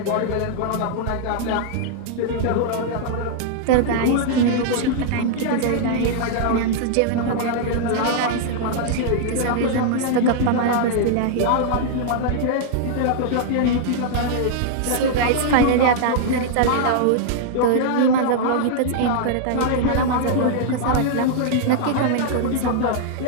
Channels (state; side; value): different; both; correlation -0.01